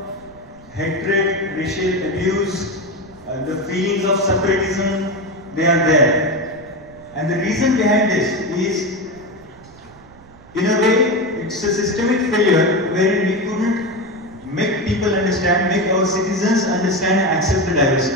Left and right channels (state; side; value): noise; right; rumble, 24 dB below the sound